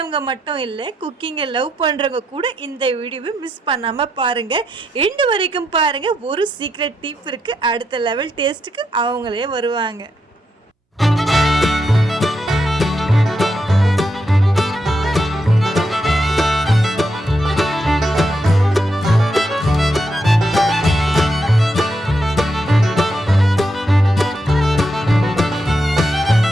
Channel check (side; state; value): both; normal; correlation 0.82